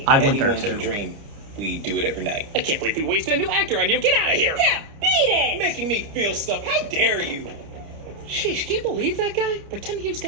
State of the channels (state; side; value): late; left; 29 ms